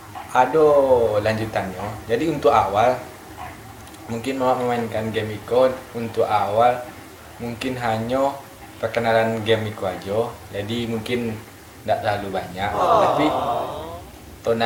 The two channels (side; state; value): both; identical; correlation 1.00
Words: ada lanjutannya. Jadi untuk awal mungkin Mama memainkan game Iko untuk awal mungkin hanya perkenalan game Iko aja. Jadi mungkin tidak terlalu banyak, tapi